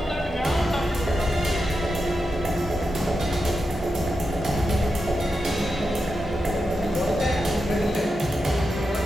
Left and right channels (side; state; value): both; normal; correlation 0.88